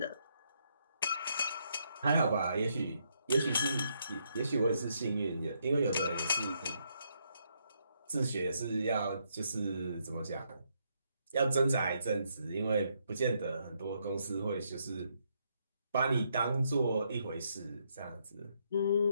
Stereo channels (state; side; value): inverted; both; correlation -0.76